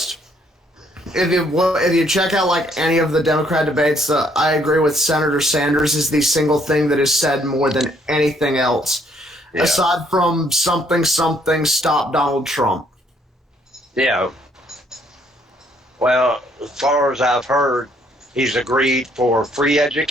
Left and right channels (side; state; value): both; normal; correlation 0.67